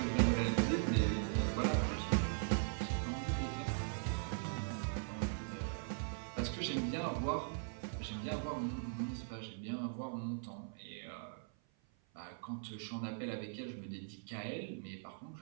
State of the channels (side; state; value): left; silent; 51 dB below the other